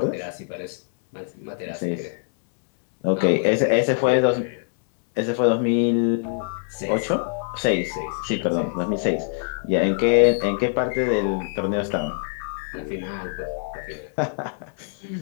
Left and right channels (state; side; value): silent; right; digital silence